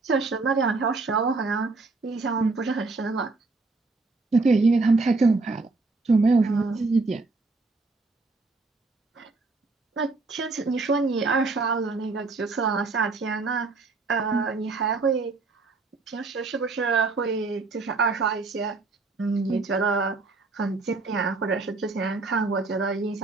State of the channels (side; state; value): left; quieter; 3.7 dB